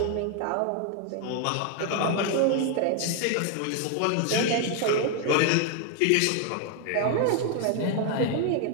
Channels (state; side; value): different; both; correlation 0.01